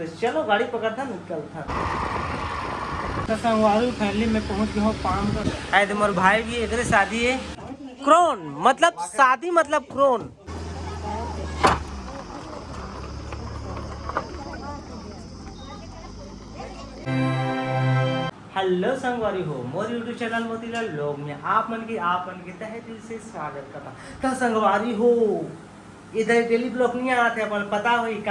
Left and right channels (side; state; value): both; identical; correlation 1.00